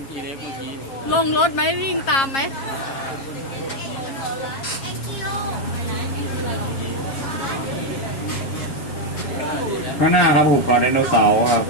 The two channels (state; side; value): late; right; 7.4 ms